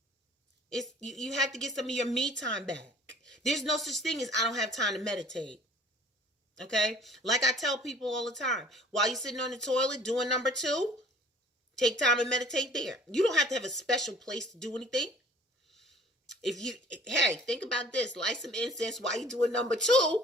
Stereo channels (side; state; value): both; normal; correlation 0.51